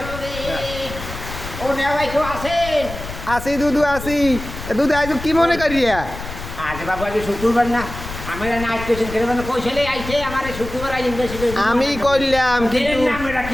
ও নেওয়াই তো আছেন আসি দুদু আসি দুদু আজ কি মনে করিয়া আজ বাবু আজ শুক্রবার না আমরা নাইট পেশেন্ট করে মানে কইছলে আইছে আমারে শুক্রবার আই ইনভেস্টিগেশন আমি করলাম কিন্তু আমরা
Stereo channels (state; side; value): noise; left; rumble, 10 dB below the sound